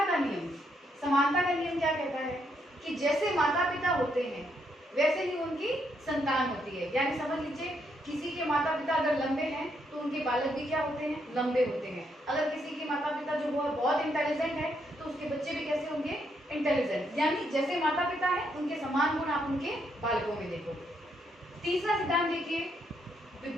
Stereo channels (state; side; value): normal; both; correlation 0.76